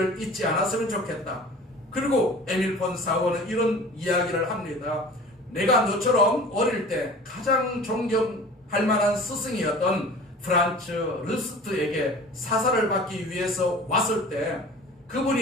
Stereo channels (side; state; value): both; normal; correlation 0.42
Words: 잊지 않았으면 좋겠다. 그리고 에밀 폰 사우어는 이런 이야기를 합니다. 내가 너처럼 어릴 때 가장 존경할 만한 스승이었던 프란츠 르스트에게 사사를 받기 위해서 왔을 때